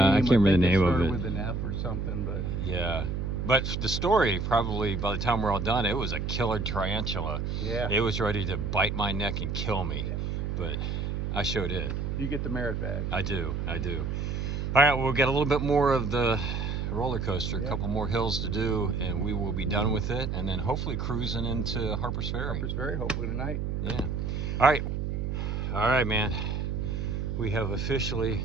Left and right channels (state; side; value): noise; right; hum, 2 dB below the sound